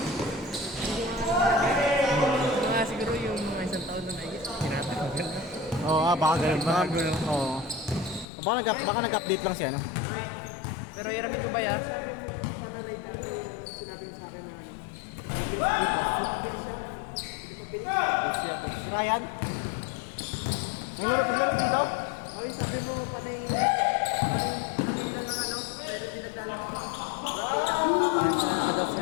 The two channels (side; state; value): right; drops out; at 8.2 s